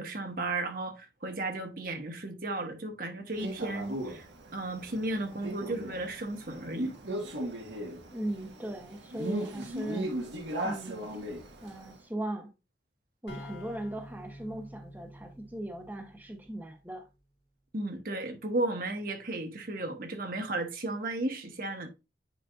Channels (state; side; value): normal; both; correlation 0.44